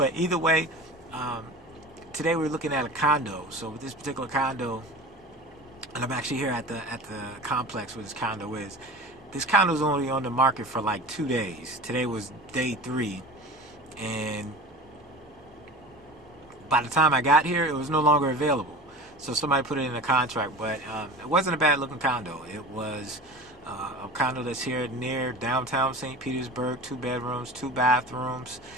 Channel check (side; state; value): both; normal; correlation 0.35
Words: either way, um, today we're looking at a condo. So with this particular condo, and I'm actually here at the complex where this condo is. This condo is only on the market for like 2 days. Today was day 3, and by the time I got here, it was no longer available. So somebody put it in a contract, but it wasn't a bad looking condo. It was a condo that's here near downtown St. Petersburg, 2 bedrooms, 2 bathrooms,